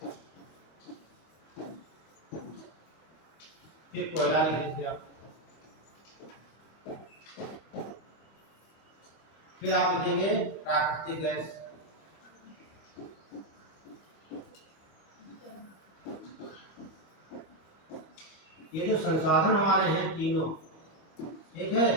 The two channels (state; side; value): late; right; 25 ms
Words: फिर कोयला लिख दीजिए आप, फिर आप लिखेंगे प्राकृतिक गैस, ये जो संसाधन हमारे हैं तीनों, ठीक है,